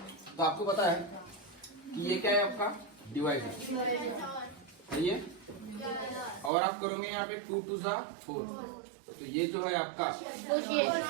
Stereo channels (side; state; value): left; drops out; at 6.5 s